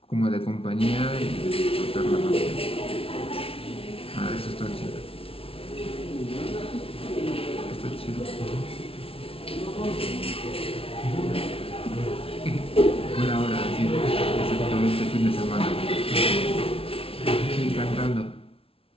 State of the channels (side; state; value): right; late; 0.26 ms